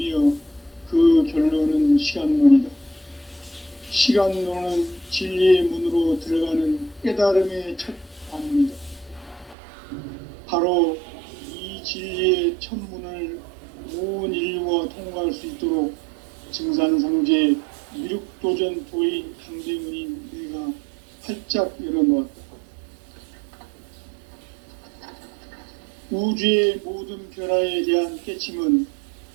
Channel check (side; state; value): left; drops out; at 9.6 s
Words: 그 결론은 시간론이다. 시간론은 진리의 문으로 들어가는 깨달음의 첫 관문이다. 바로 이 진리의 첫 문을 온 인류가 통과할 수 있도록 증산상제 미륵도전 도인 강대훈인 내가 활짝 열어놓았다. 우주의 모든 변화에 대한 깨침은